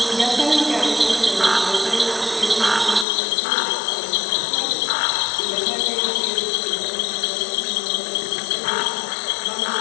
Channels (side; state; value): right; drops out; at 3.1 s